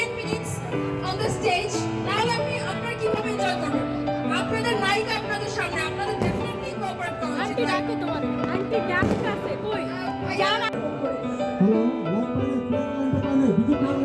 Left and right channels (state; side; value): identical; both; correlation 1.00